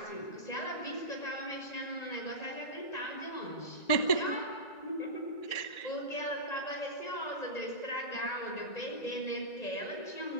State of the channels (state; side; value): late; right; 1.9 ms